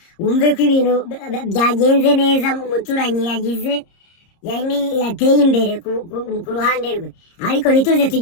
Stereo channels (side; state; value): right; late; 30 ms